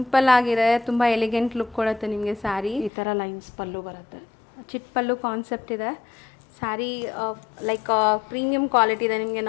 ಆಗಿದೆ, ತುಂಬ ಎಲಿಗೆಂಟ್ ಲುಕ್ ಕೊಡುತ್ತೆ ನಿಮಗೆ ಸ್ಯಾರಿ. ಈ ಥರ ಲೈನ್ಸ್ ಪಲ್ಲು ಬರುತ್ತೆ, ಚಿಟ್ ಪಲ್ಲು ಕಾನ್ಸೆಪ್ಟ್ ಇದೆ. ಸ್ಯಾರಿ ಲೈಕ್ ಪ್ರೀಮಿಯಂ ಕ್ವಾಲಿಟಿ ಇದೆ. ನಿಮಗೆ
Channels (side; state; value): right; drops out; at 2.9 s